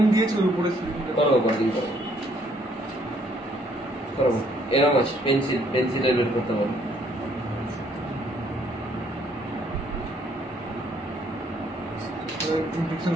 দিয়েছে ওর উপরে করাবো পরের দিন, করাবো। এরকম আছে, পেন্সিলের বের করতে পারবো। ইনফেকশন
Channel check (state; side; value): normal; both; correlation 0.66